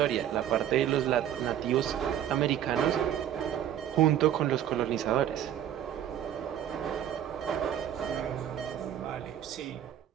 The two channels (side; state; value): left; quieter; 10.6 dB